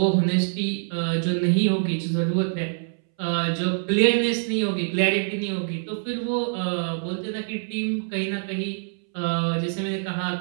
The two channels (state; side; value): silent; left; 62 dB below the other